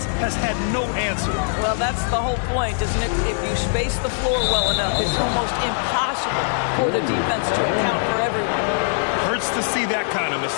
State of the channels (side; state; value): right; silent; digital silence